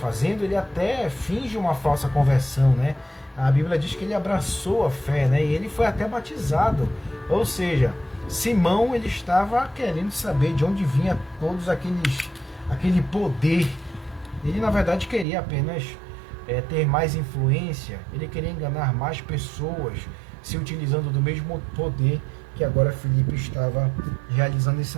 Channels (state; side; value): drops out; left; at 15.2 s